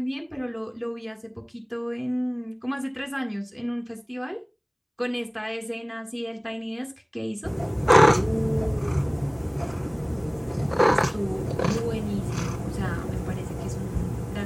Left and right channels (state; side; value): identical; both; correlation 1.00